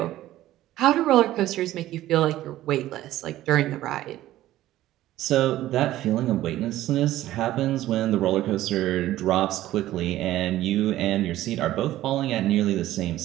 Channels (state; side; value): quieter; left; 14.6 dB